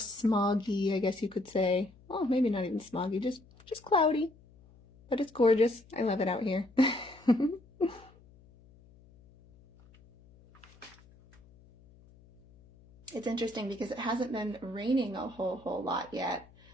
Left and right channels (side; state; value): left; noise; hum, 26 dB below the sound